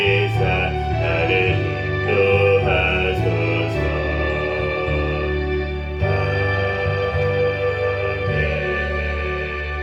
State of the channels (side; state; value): both; identical; correlation 1.00